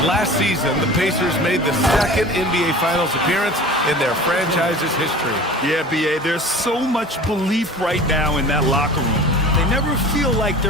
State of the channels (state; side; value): normal; both; correlation 0.40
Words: last season the Pacers made the second NBA Finals appearance in their franchise's history. Yeah, B.A., there's so much belief right now in that locker room. They never feel like